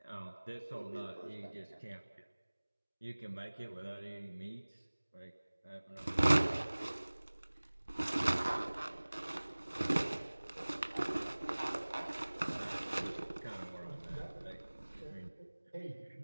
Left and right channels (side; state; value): both; inverted; correlation -1.00